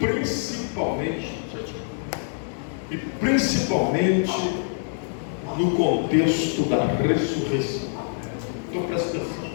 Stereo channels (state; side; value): silent; right; digital silence